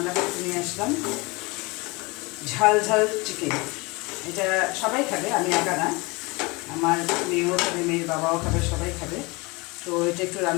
করতে নিয়ে আসলাম ঝাল ঝাল চিকেন। এটা সবাই খাবে, আমি একা না, আমার মেয়েও খাবে, মেয়ের বাবাও খাবে, সবাই খাবে। তো এটা একটু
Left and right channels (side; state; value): right; quieter; 25.7 dB